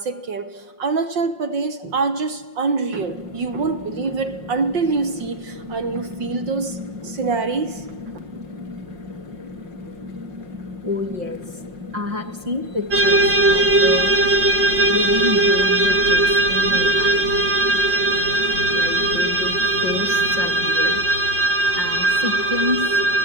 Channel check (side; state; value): left; late; 5.6 ms